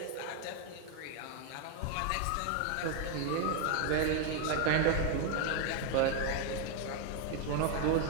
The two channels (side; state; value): both; different; correlation 0.01